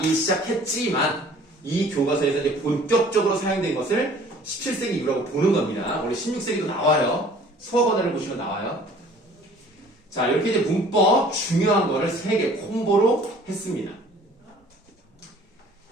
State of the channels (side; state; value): both; normal; correlation 0.52